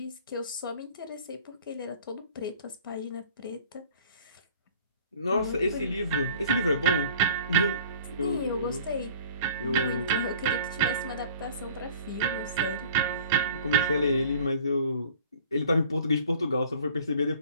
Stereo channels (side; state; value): both; inverted; correlation -0.48